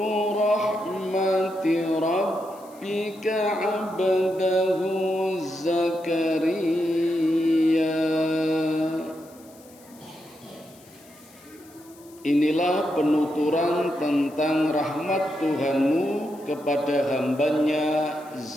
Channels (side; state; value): left; noise; hiss, 25 dB below the sound